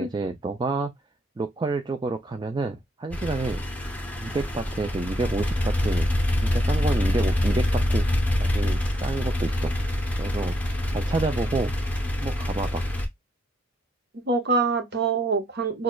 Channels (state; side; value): normal; both; correlation 0.75